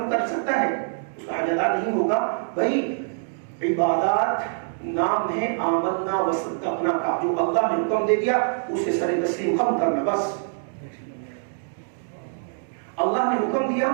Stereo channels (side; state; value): left; silent; digital silence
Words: سکتا ہے، اس کا حج ادا نہیں ہوگا۔ بھائی عبادات نام ہے آمنا وصدقنا کا، جو اللہ نے حکم دے دیا اسے سر تسلیم خم کرنا بس۔ اللہ نے حکم دیا